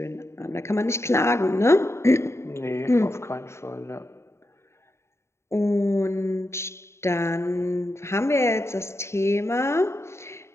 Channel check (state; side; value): late; right; 0.13 ms